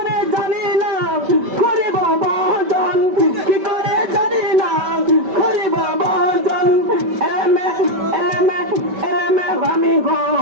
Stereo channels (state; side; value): late; left; 5.2 ms